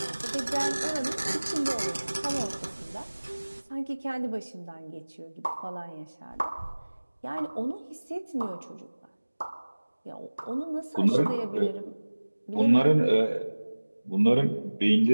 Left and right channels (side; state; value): both; inverted; correlation -1.00